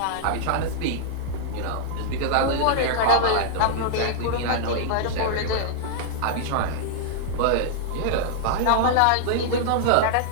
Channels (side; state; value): both; different; correlation -0.01